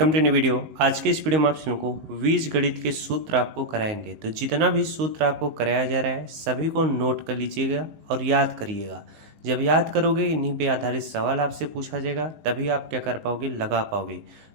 to new video. आज के इस वीडियो में आप लोगों को बीज गणित के सूत्र आपको कराएंगे। तो जितना भी सूत्र आपको कराया जा रहा है सभी को नोट कर लीजिएगा और याद करिएगा। जब याद करोगे इन्हीं पे आधारित सवाल आपसे पूछा जाएगा, तभी आप क्या कर पाओगे, लगा पाओगे।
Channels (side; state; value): left; late; 19 ms